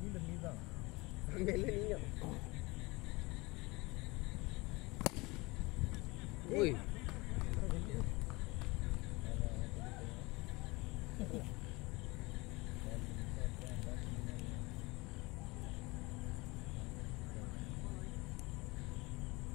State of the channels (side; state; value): right; quieter; 24.0 dB